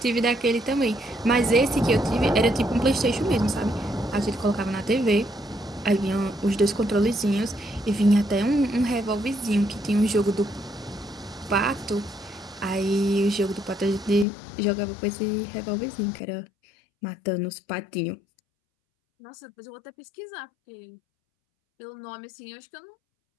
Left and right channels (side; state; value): right; drops out; at 14.2 s